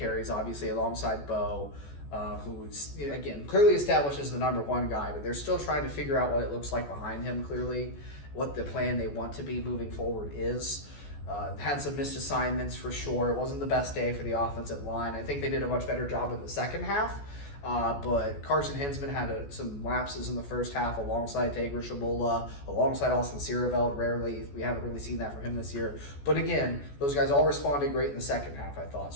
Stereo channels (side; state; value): right; late; 14 ms